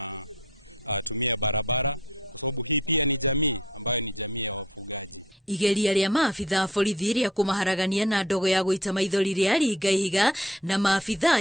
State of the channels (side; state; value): both; normal; correlation 0.53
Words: tumia barabara, kwa sababu hii pia ni jamii ambayo ni jamii ya wafugaji. Igeria rĩa maafitha borithi rĩa kũmaharagania na ndogo ya gũita maithori rĩa ringa ihiga na maafitha